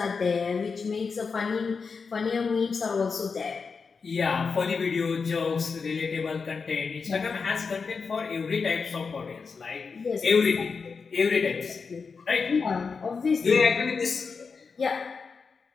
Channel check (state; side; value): quieter; right; 5.1 dB